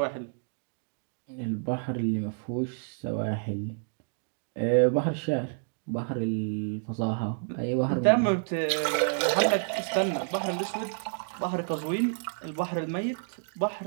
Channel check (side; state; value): left; silent; digital silence